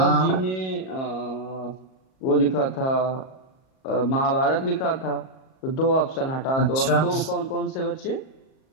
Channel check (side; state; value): right; late; 38 ms